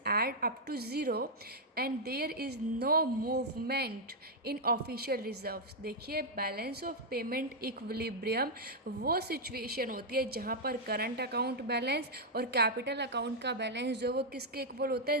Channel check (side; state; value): both; normal; correlation -0.03